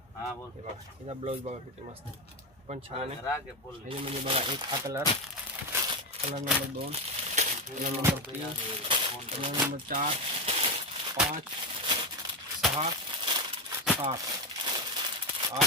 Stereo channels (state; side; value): normal; both; correlation 0.12